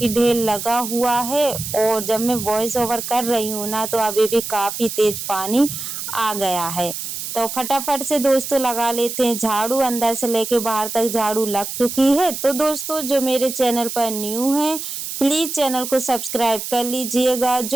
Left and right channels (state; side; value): noise; right; hiss, 6 dB below the sound